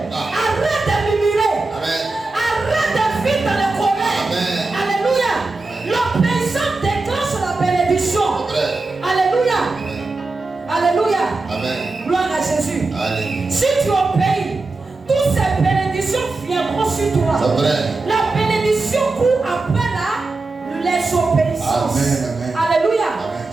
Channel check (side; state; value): left; quieter; 3.5 dB